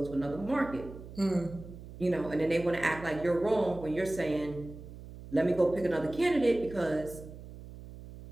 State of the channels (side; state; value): right; noise; hum, 15 dB below the sound